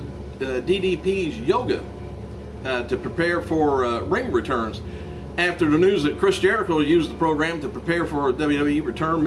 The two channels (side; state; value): both; identical; correlation 1.00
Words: DDP's yoga to prepare for ring returns. After the news that Chris Jericho used the program to prepare for a WWE return,